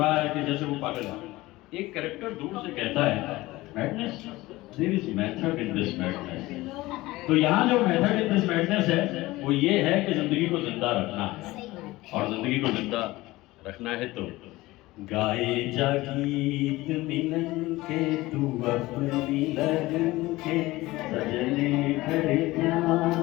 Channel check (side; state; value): right; quieter; 19.1 dB